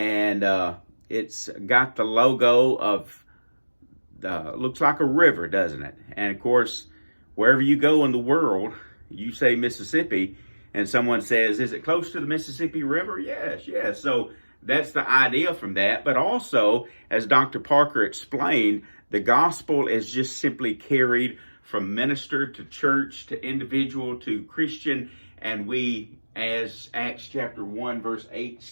it's got the logo of, looks like a river, doesn't it? And of course, wherever you go in the world, you say Mississippi, and someone says, is it close to the Mississippi River? Yes, yes. So that's the idea from that. But also, as Dr. Parker explained, the gospel is just simply carried from minister to church to individual to Christian. And we, as Acts chapter 1, verse 8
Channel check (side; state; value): both; inverted; correlation -1.00